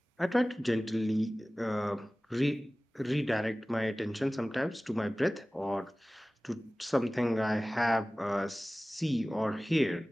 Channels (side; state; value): both; normal; correlation 0.98